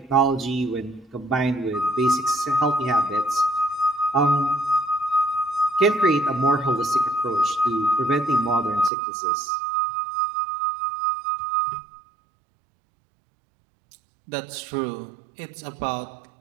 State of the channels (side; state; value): left; drops out; at 8.9 s